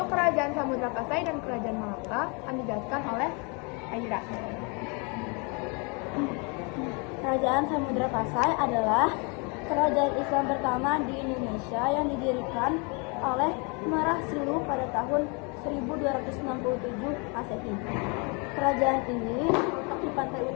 Kerajaan Samudra Pasai dan Kerajaan Malaka akan dijelaskan oleh Aira. Kerajaan Samudra Pasai adalah kerajaan Islam pertama di Indonesia yang didirikan oleh Merah Silu pada tahun 1267 Masehi. Kerajaan ini terletak di pantai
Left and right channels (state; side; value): quieter; right; 32.6 dB